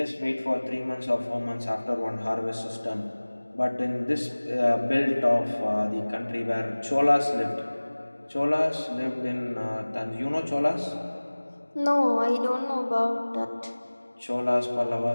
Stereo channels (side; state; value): both; inverted; correlation -1.00